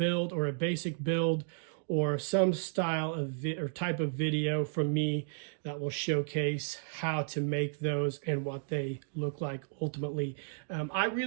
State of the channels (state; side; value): silent; left; digital silence